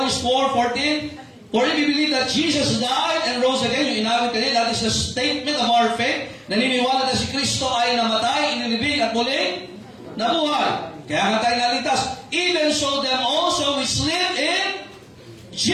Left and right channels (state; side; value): identical; both; correlation 1.00